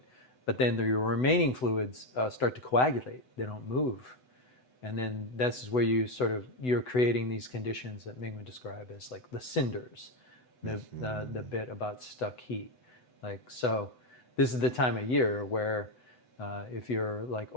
But then your remaining fluids start to coagulate; they don't move. And then this is where you're creating these conditions that Ming would describe as like the cinders, the bit about stuck heat. Like, so this is the time of year where if you're like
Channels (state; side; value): late; right; 7.9 ms